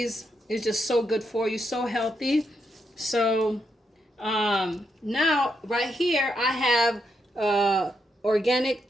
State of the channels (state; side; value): normal; both; correlation 0.80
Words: It's just so good for you, so healthy. So now right here I have